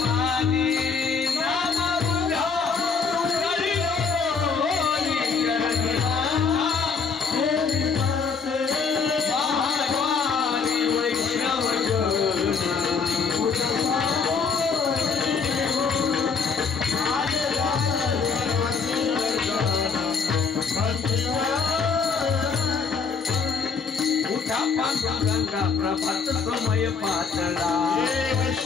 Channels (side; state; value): right; quieter; 5.3 dB